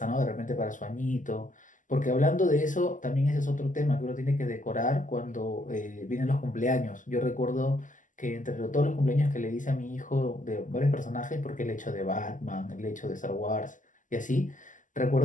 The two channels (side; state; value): right; late; 0.37 ms